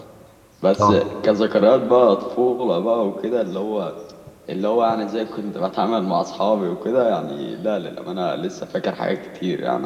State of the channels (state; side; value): identical; both; correlation 1.00